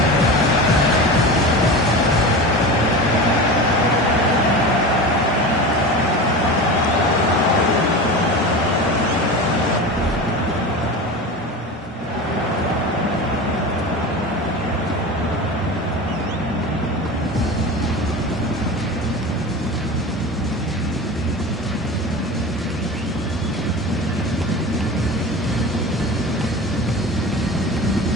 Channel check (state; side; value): normal; both; correlation 0.29